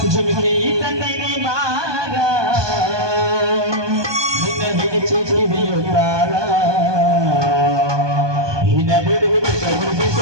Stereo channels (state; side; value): late; left; 1.2 ms